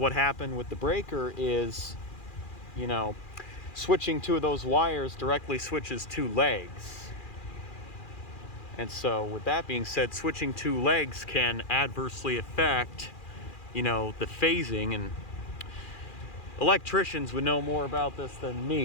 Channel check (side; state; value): right; late; 2.4 ms